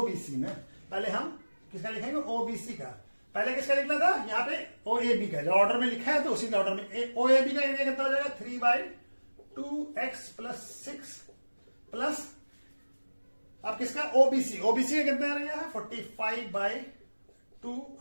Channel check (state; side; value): inverted; both; correlation -1.00